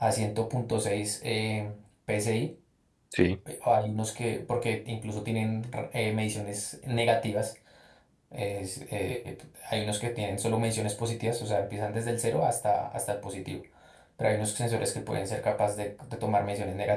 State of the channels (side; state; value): both; identical; correlation 1.00